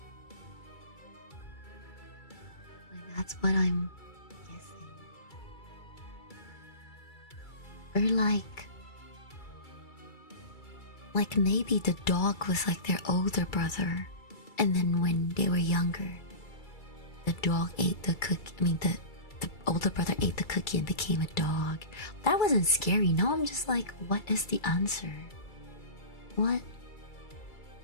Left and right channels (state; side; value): late; right; 2.3 ms